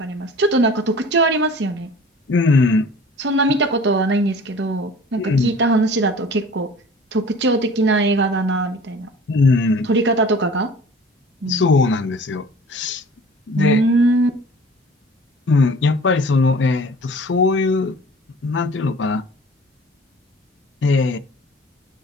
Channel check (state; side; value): normal; both; correlation 0.46